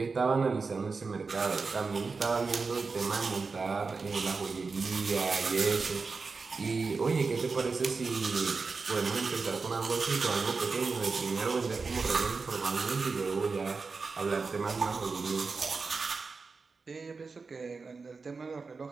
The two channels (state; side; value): quieter; left; 4.5 dB